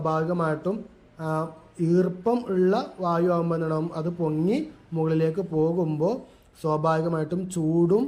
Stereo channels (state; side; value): identical; both; correlation 1.00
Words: ഈർപ്പം ഉള്ള വായു ആകുമ്പോൾ എന്തുണ്ടാവും? അത് പൊങ്ങി മുകളിലേക്ക് പോകുമ്പോൾ സ്വാഭാവികമായിട്ടും ചൂടും